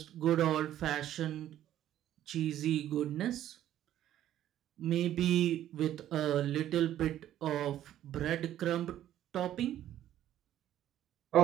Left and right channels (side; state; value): left; quieter; 12.1 dB